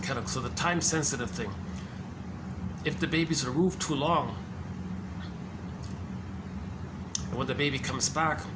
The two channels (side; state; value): both; identical; correlation 1.00